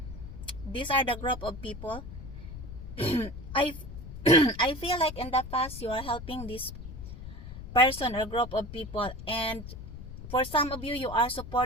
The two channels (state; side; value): noise; left; rumble, 11 dB below the sound